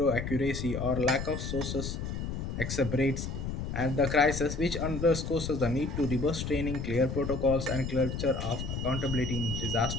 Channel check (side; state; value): left; noise; rumble, 4 dB below the sound